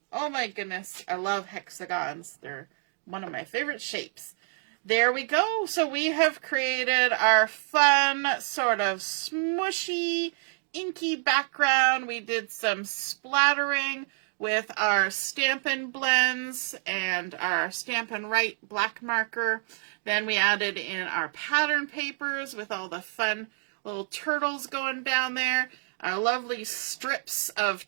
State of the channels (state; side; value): silent; left; 56 dB below the other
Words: Oh my goodness. I love hexagons. They're one of my favorite shapes. There we go. So we have created our fun sort of smushy, inky background. We did some splattering with our Stampin' blends and our Stampin' Write black marker. Then we added in our pattern papers with all the fun little turtles going down there. Our lovely strips